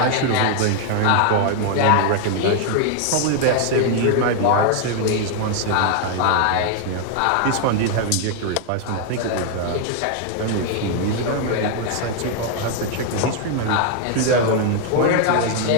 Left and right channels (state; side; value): different; both; correlation 0.00